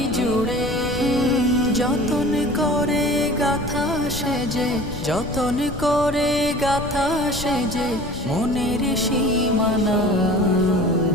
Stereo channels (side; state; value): left; noise; rumble, 10 dB below the sound